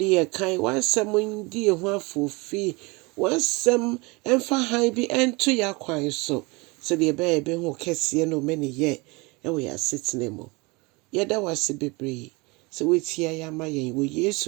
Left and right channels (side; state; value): left; quieter; 26.1 dB